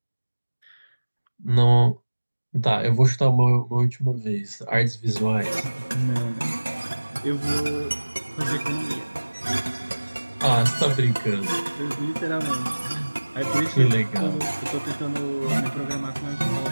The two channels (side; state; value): both; inverted; correlation -1.00